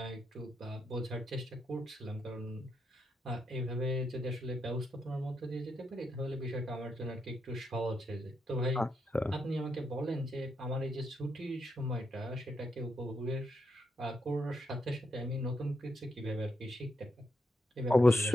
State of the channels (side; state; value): both; normal; correlation 0.81